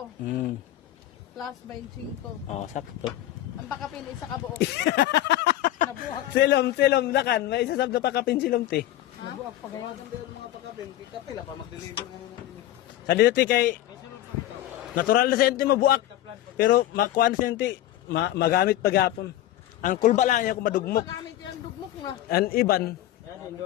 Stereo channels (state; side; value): quieter; right; 13.8 dB